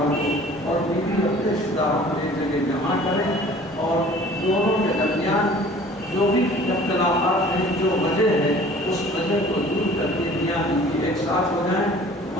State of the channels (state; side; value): normal; both; correlation 0.49